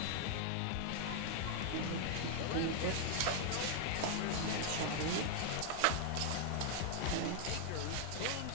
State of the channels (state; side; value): different; both; correlation 0.00